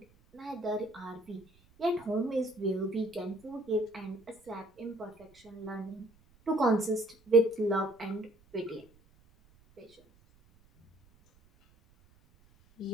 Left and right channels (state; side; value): noise; right; rumble, 30 dB below the sound